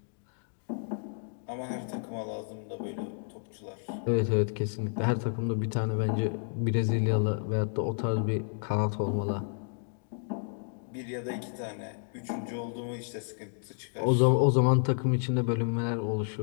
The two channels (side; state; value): right; silent; digital silence